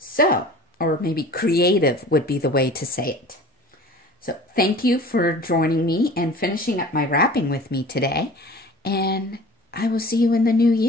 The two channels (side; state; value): both; normal; correlation 0.43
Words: or maybe creative would be the way to say it. So thank you for joining me and finishing up my wrapping with me today. And I will see you in the new